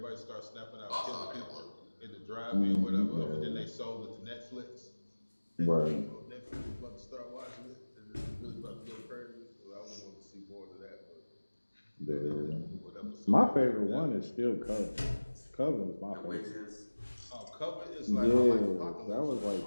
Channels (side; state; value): both; inverted; correlation -1.00